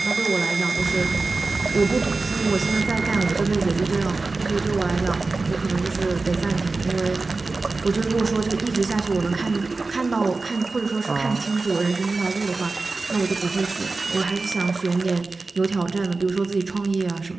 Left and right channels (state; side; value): quieter; left; 3.7 dB